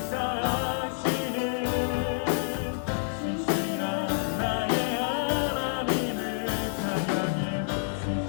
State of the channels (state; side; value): silent; right; 55 dB below the other